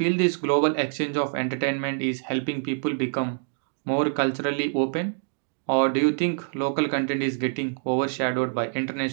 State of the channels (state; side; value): silent; left; digital silence